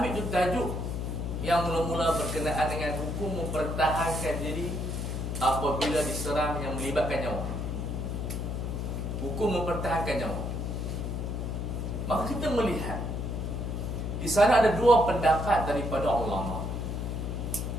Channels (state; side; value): noise; left; hum, 3 dB below the sound